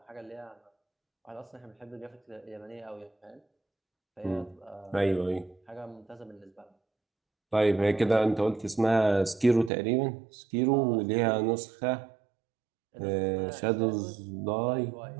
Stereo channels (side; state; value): left; drops out; at 9.7 s